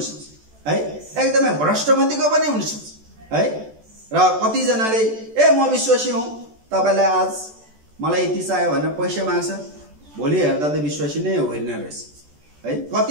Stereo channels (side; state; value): left; late; 14 ms